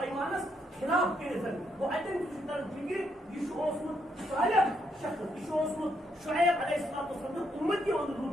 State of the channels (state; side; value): normal; both; correlation 0.76